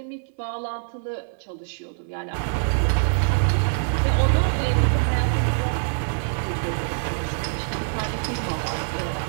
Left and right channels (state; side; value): silent; left; 60 dB below the other